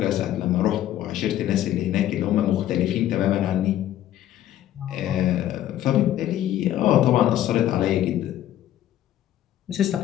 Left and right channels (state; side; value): quieter; right; 12.4 dB